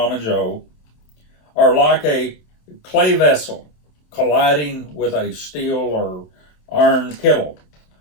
Joe, are like a clay vessel colliding with a steel or iron kettle.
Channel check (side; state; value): right; late; 27 ms